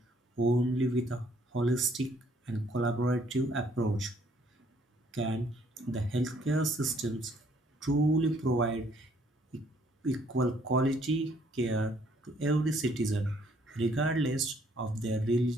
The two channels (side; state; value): both; normal; correlation 0.64